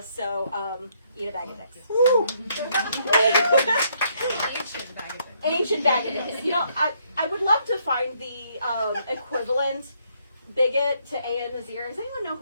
So eat a bag of dicks. Ancient bag of dicks. You know, I would love to find the equivalent bigot to A.N. Nazir. Does anyone know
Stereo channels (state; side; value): inverted; both; correlation -0.71